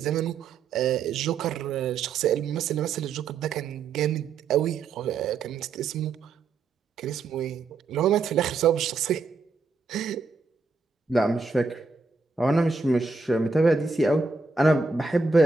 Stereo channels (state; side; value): quieter; left; 4.3 dB